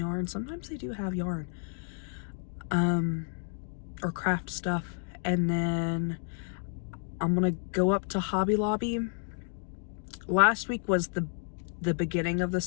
Sometimes they do have yarn. Or craft stuff. And then I'm gonna go up to Hobby Lobby. Last week was the beginning of the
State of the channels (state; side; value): silent; right; 57 dB below the other